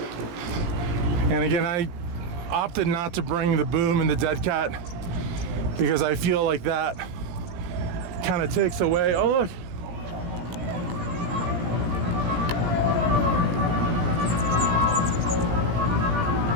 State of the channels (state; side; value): late; left; 17 ms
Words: And again, I opted not to bring the boom and the dead cat because I feel like that kind of takes away. Oh, look.